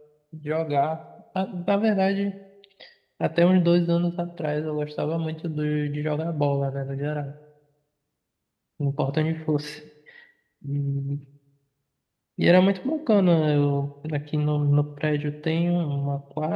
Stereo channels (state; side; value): identical; both; correlation 1.00